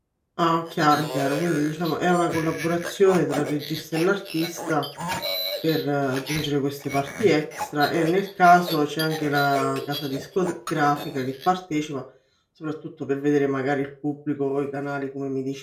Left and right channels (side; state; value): both; identical; correlation 1.00